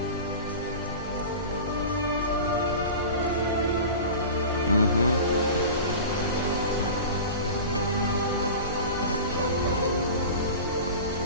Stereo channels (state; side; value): inverted; both; correlation -0.34